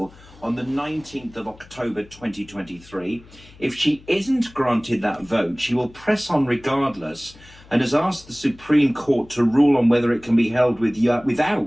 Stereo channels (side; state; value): left; noise; hum, 23 dB below the sound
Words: the 19th of October 2023. If she isn't granted that vote, she will press on regardless and has asked the Supreme Court to rule on whether it can be held